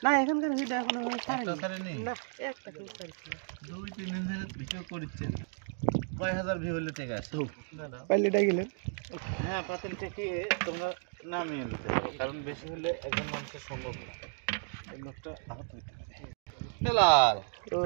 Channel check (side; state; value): left; silent; 56 dB below the other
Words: না এখানকার ভিডিও এখনো ছাড়িনি না একটা কেউ ছাড়ছি না 2-3 দিন ধরে ভিডিও করছেন কয় হাজার ভিউ হলে ঠিক আছে পাইলেটা গেলেন হ্যাঁ পাতিল থেকে তোমরা নামিয়ে নিতে হবে কারণ বেশি হলে একজন মানুষের সম্ভব না এই লোকটা আহত হইতে পারে হেলাল